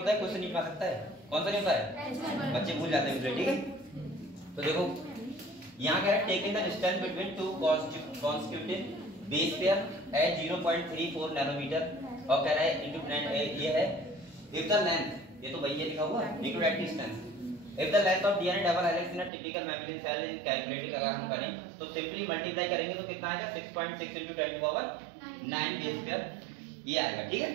है, क्वेश्चन नहीं बना सकता है। कौन सा नहीं होता है? बच्चे भूल जाते हैं मुझे, ठीक है। तो देखो यहाँ कह रहा है, taking the distance between two constitutive base pair at 0.34 nanometre, और कह रहा है इनटू ये है इफ द लेंथ, ये तो भैया लिखा हुआ है, into that distance if the length of DNA double helix in a typical mammalian cell in calculating अगर हम करें तो सिंपली मल्टीप्लाई करेंगे तो कितना आएगा? 6.6 into 10 to the power 9 base pair, ये आएगा, ठीक है।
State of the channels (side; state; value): left; drops out; at 19.3 s